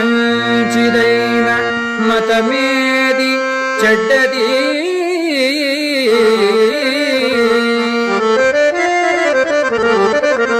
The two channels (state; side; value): identical; both; correlation 1.00